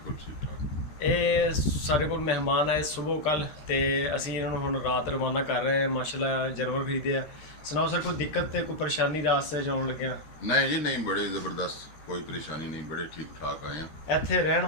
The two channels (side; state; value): right; late; 13 ms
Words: ਠੀਕ ਠਾਕ। ਇਹ ਸਾਡੇ ਕੋਲ ਮਹਿਮਾਨ ਆਏ ਸਵੇਰ ਕੱਲ ਤੇ ਅਸੀਂ ਇਹਨਾਂ ਨੂੰ ਹੁਣ ਰਾਤ ਰਵਾਨਾ ਕਰ ਰਹੇ ਹਾਂ। ਮਾਸ਼ਾਅੱਲਾ ਜਾਨਵਰ ਖਰੀਦੇ ਆ। ਸੁਣਾਓ ਸਰ, ਕੋਈ ਦਿੱਕਤ ਤੇ ਕੋਈ ਪਰੇਸ਼ਾਨੀ ਰਾਸਤੇ 'ਚ ਆਉਣ ਲੱਗਿਆ? ਨਹੀਂ ਜੀ ਨਹੀਂ, ਬੜੇ ਜ਼ਬਰਦਸਤ, ਕੋਈ ਪਰੇਸ਼ਾਨੀ ਨਹੀਂ, ਬੜੇ ਠੀਕ ਠਾਕ ਆਏ ਆ। ਇੱਥੇ ਰਹਿਣ